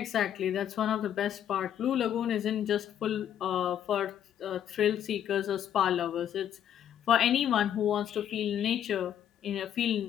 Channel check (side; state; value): right; quieter; 10.1 dB